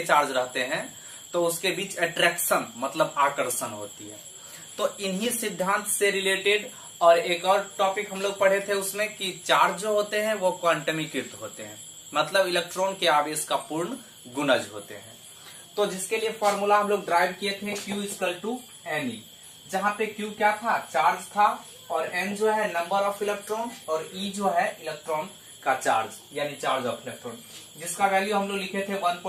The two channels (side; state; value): both; identical; correlation 1.00